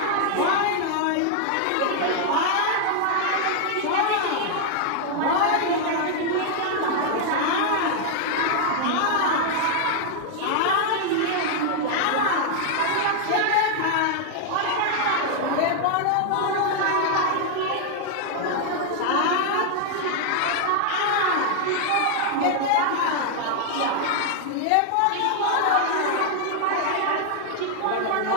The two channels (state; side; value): different; both; correlation 0.00